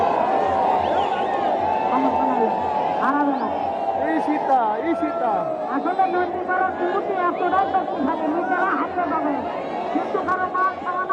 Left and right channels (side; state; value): both; identical; correlation 1.00